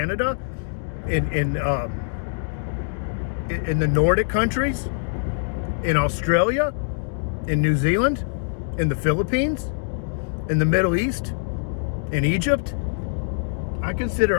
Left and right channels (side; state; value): right; silent; digital silence